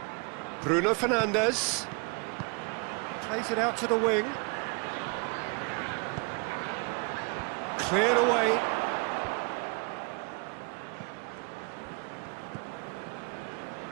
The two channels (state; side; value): quieter; left; 33.2 dB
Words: Bruno Fernandes. Plays it out to the wing. Cleared away.